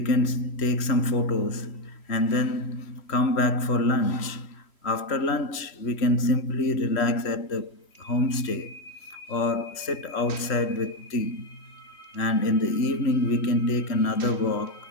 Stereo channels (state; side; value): late; right; 3.1 ms